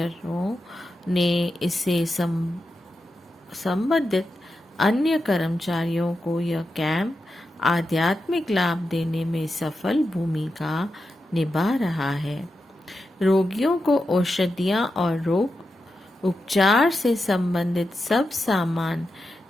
ने इसे संबंधित अन्य कर्मचारियों को यह कैंप आध्यात्मिक लाभ देने में सफल भूमिका निभा रहा है। रोगियों को औषधियाँ और रोग उपचार से संबंधित सब सामान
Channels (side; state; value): both; normal; correlation 0.89